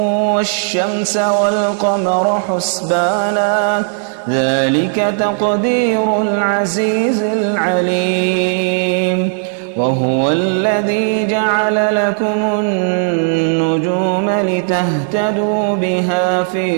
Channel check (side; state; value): left; silent; digital silence